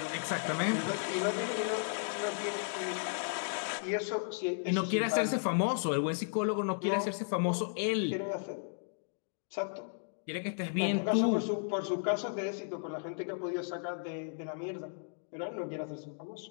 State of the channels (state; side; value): silent; right; digital silence